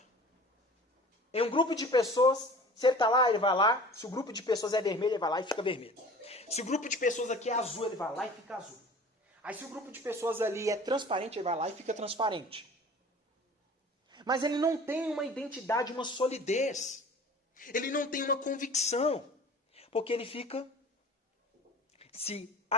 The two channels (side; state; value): both; normal; correlation 0.43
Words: Em um grupo de pessoas, se ele está lá, ele vai lá. Se o grupo de pessoas é vermelho, ele vai lá e fica vermelho. Se o grupo de pessoas aqui é azul, ele vai lá e fica azul. Aí se o grupo de pessoas ali é transparente, ele vai lá e fica transparente. Mas ele não tem uma identidade, uma solidez. Ele não tem uma convicção. Porque ele fica se